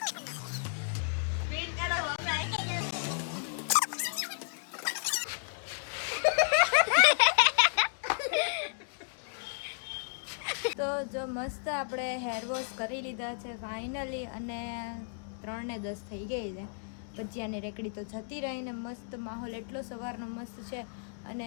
તો જો મસ્ત આપણે હેર વોશ કરી લીધા છે ફાઇનલી, અને 3:10 થઈ ગઈ છે। ભજીયાની રેકડી તો જતી રહીને મસ્ત માહોલ એટલો સવારનો મસ્ત છે,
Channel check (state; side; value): silent; right; digital silence